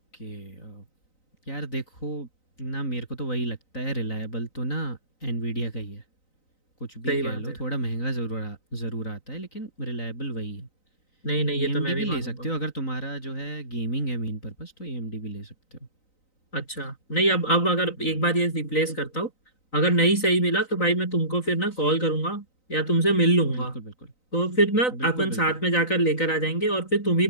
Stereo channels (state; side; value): late; right; 3.9 ms